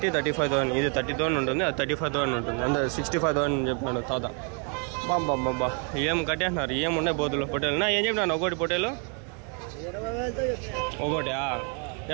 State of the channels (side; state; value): left; quieter; 39.2 dB